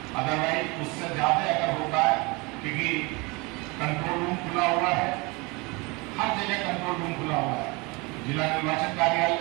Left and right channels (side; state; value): left; quieter; 26.8 dB